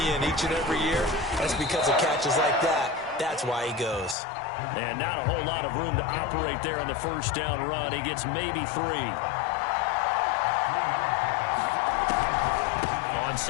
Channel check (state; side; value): drops out; right; at 4.2 s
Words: in each and every year. That's because of catches like that. That's why he goes. And not a whole lot of room to operate there on the first down run. He gets maybe 3. On